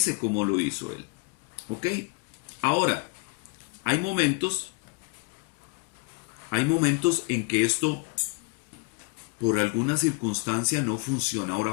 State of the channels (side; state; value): right; quieter; 33.0 dB